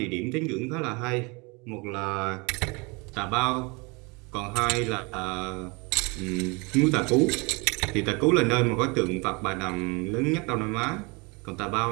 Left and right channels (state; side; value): quieter; left; 28.7 dB